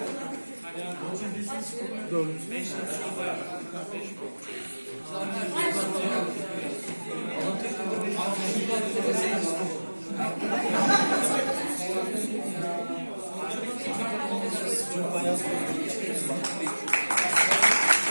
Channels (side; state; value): both; inverted; correlation -1.00